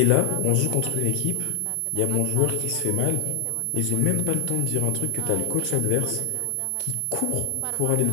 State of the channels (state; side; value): different; both; correlation 0.00